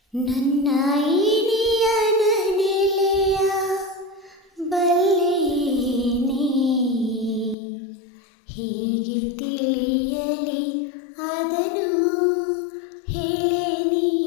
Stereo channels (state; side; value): drops out; right; at 7.6 s